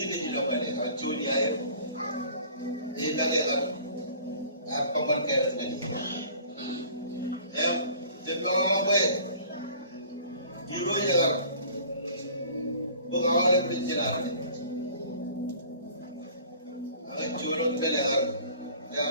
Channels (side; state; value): both; inverted; correlation -0.48